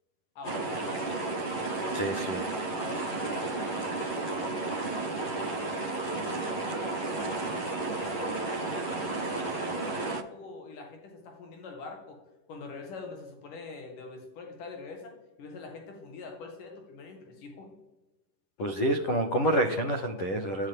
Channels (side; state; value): right; late; 11 ms